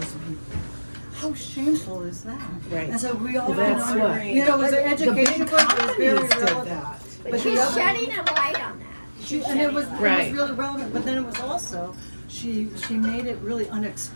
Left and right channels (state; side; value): inverted; both; correlation -1.00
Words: people. How shameful is that? Right. And so we all Well, that's what- it was an education book, it was very relevant. But she's shedding a light on that. It was Right. really relevant, but then it was also, she made it really